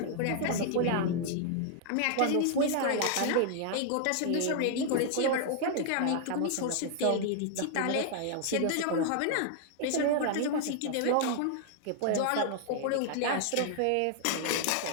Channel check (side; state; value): both; different; correlation -0.01